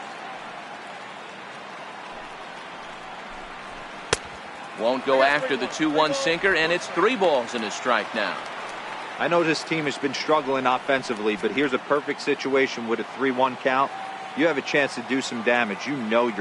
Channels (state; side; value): identical; both; correlation 1.00